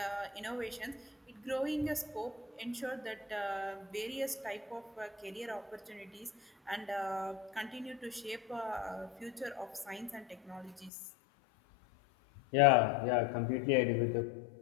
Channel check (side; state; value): right; drops out; at 10.9 s